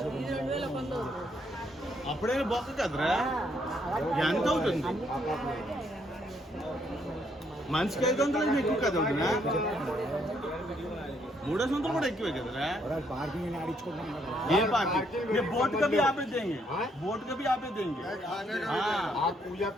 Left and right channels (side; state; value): both; normal; correlation 0.71